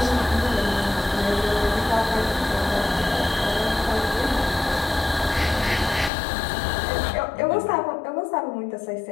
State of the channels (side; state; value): right; drops out; at 6.1 s